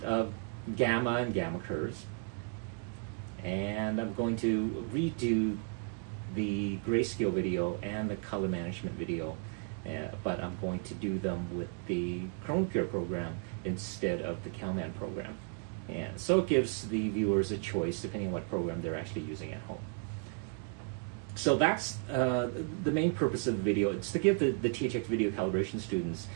of gamma and gamma curves. And I'm going to redo the grayscale video and the color management video, but I'm going to do them with the ChromaPure program instead of the CalMan program. And so it gives the viewers a choice depending on what program they're actually using at home. So that's the main purpose of the video. It's to give the THX video calibration students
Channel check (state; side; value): quieter; left; 37.2 dB